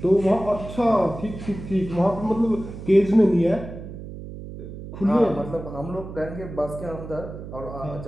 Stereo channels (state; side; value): noise; right; hum, 11 dB below the sound